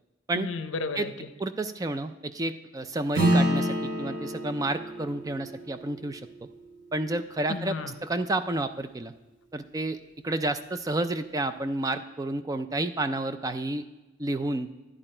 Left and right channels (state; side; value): normal; both; correlation 0.57